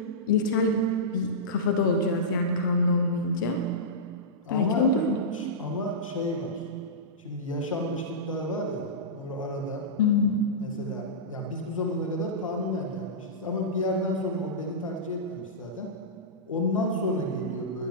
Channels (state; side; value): normal; both; correlation -0.16